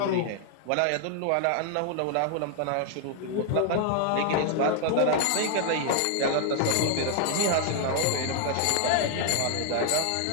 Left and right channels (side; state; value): both; different; correlation 0.00